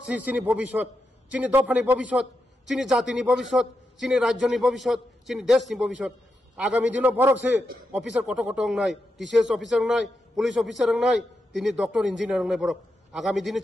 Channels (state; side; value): normal; both; correlation 0.86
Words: চিনি ভবিষ্যৎ চিনি দফানি ভবিষ্যৎ চিনি জাতিনি ভবিষ্যৎ চিনি রাজ্যনি ভবিষ্যৎ চিনি দেশনি ভবিষ্যৎ আগামী দিনও বরক সে অফিসার কত কত নাই টিসিএস অফিসার নাই পুলিশ অফিসার নাই তিনি ডক্টর ইঞ্জিনিয়ার নাই বরক আগামী দিনে